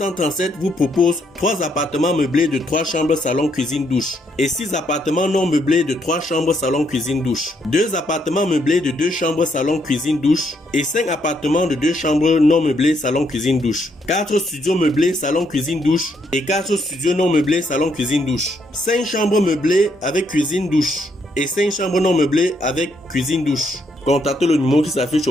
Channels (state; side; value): normal; both; correlation 0.74